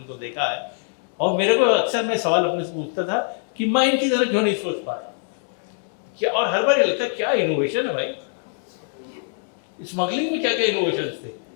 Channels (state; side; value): silent; right; digital silence